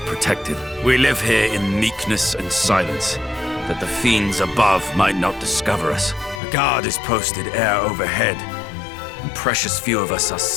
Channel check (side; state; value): right; drops out; at 6.4 s